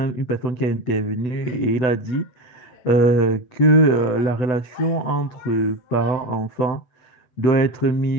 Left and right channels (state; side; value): late; right; 7.9 ms